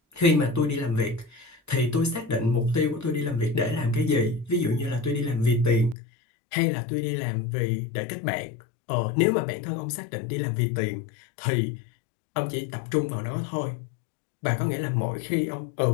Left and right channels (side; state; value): right; drops out; at 6.0 s